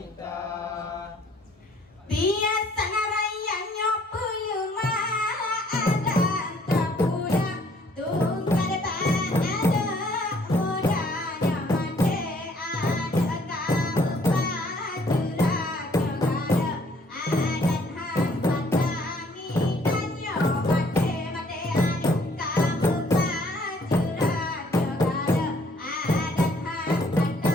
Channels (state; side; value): normal; both; correlation 0.62